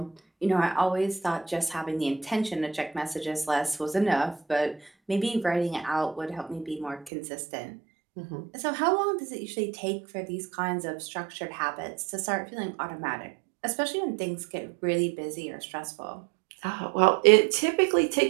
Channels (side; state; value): left; drops out; at 7.1 s